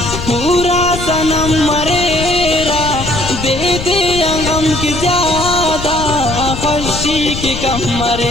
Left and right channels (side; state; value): left; noise; rumble, 7 dB below the sound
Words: पूरा सनम मरेरा दे दे अंगम की ज्यादा खुशी की कम